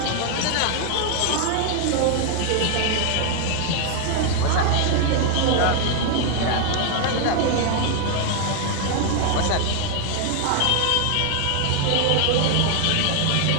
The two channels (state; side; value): different; both; correlation 0.00